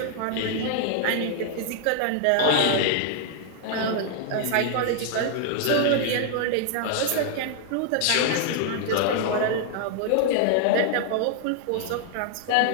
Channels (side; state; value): both; different; correlation 0.00